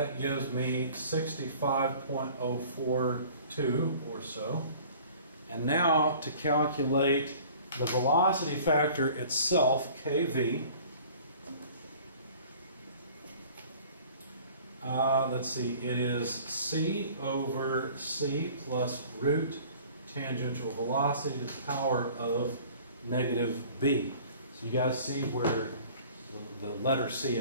gives me 65.042 or so. And now to calculate the velocity factor itself, kV, let's see, it is C over C plus root tangential velocity to the power of negative B. So you guys see where the letter C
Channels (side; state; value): both; inverted; correlation -0.48